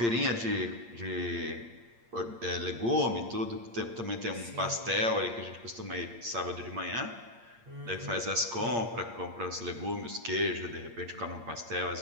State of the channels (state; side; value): late; left; 8.7 ms